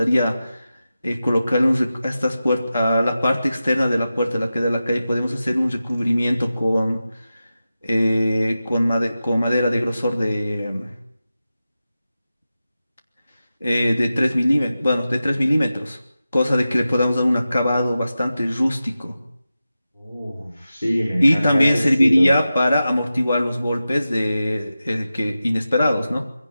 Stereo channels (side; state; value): both; inverted; correlation -0.93